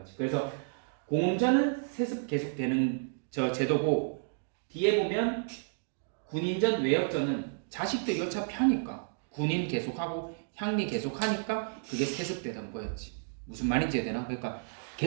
그래서 공음전은 세습 계속되는 저 제도고, 뒤에 보면 군인전, 외역전은 자식들이 어차피 하니까 군인 계속하고 향리 계속하니까 그게 세습되던 거였지. 무슨 말인지 되나? 그러니까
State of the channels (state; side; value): silent; left; digital silence